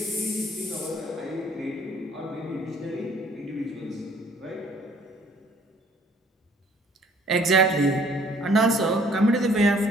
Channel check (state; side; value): normal; both; correlation 0.58